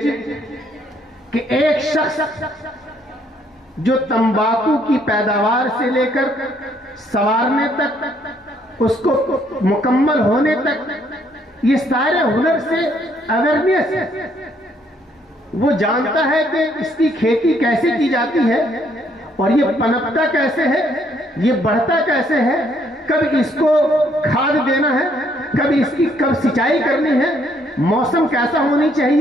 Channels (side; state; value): both; normal; correlation 0.68